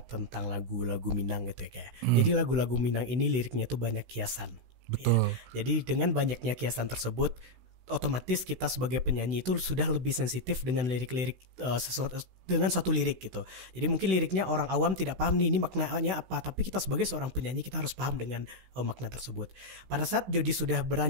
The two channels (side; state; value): left; late; 16 ms